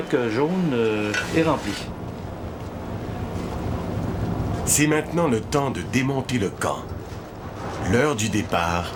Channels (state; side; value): identical; both; correlation 1.00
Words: jaune est rempli. C'est maintenant le temps de démonter le camp. L'heure du départ